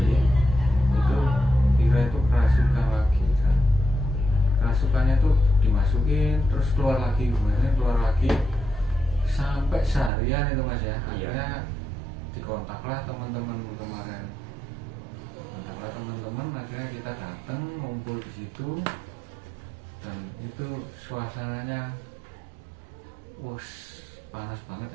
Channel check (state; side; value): drops out; left; at 10.1 s